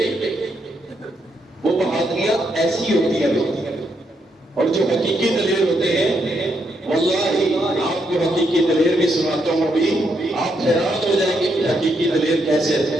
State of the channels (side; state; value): both; normal; correlation 0.78